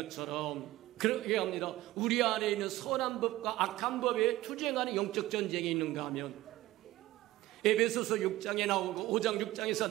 그렇게 합니다. 우리 안에 있는 선한 법과 악한 법에 투쟁하는 영적 전쟁이 있는가 하면 에베소서 6장에 나오고 5장 6장에서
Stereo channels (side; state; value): left; quieter; 16.7 dB